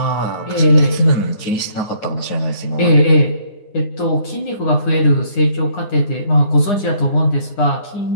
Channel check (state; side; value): late; right; 9.8 ms